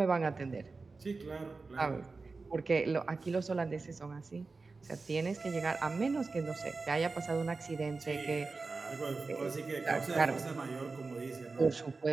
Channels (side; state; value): left; quieter; 4.0 dB